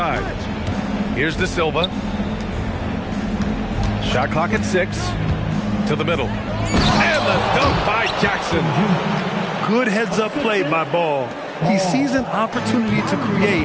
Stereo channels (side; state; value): both; identical; correlation 1.00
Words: Here's De Silva. Shot clock at 6. To the middle. And the dunk by Jackson. Good heads-up play by Ball. He sees an opportunity to